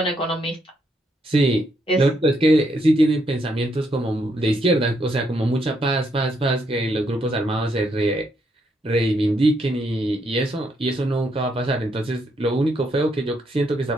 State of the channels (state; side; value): normal; both; correlation 0.76